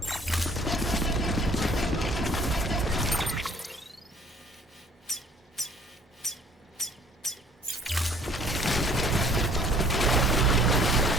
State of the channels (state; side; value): normal; both; correlation 0.56